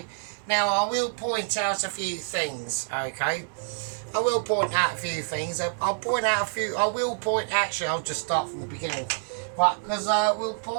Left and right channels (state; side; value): silent; left; digital silence